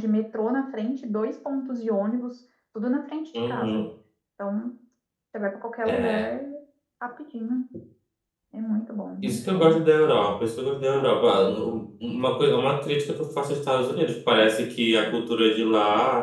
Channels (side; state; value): both; identical; correlation 1.00